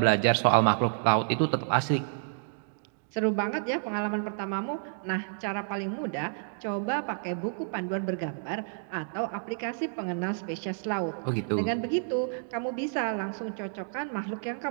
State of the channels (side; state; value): left; silent; digital silence